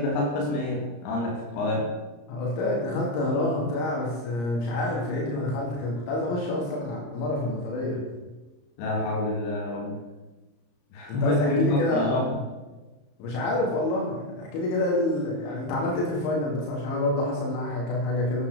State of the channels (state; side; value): late; right; 34 ms